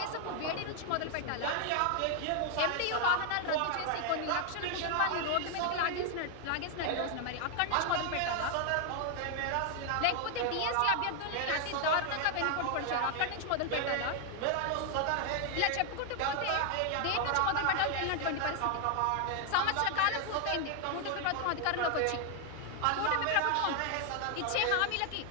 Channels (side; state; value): both; different; correlation 0.00